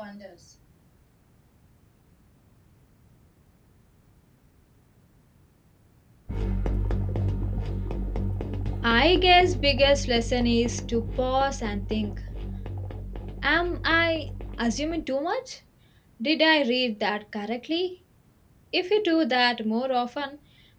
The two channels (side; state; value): both; identical; correlation 1.00